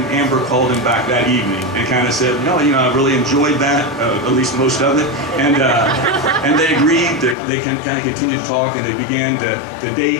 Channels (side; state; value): right; drops out; at 7.4 s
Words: Amber called him back that evening and kind of said, no, you know, I really enjoyed that, at least most of it, and they agreed. They kind of continued to talk, and they began to date